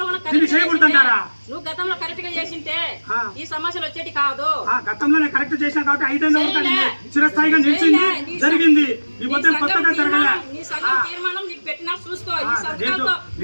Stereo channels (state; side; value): inverted; both; correlation -1.00